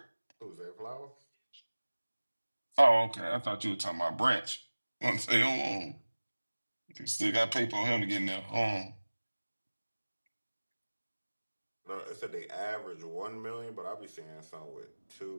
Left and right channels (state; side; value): inverted; both; correlation -1.00